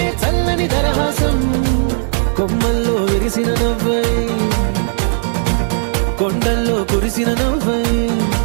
చల్లని దరహాసం. కొమ్మల్లో విరిసిన నవ్వై, కొండల్లో కురిసిన నవ్వై,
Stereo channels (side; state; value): left; silent; digital silence